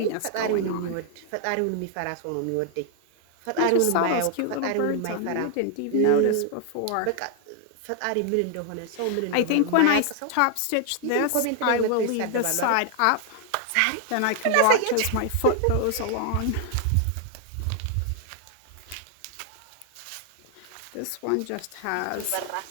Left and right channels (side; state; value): both; different; correlation 0.00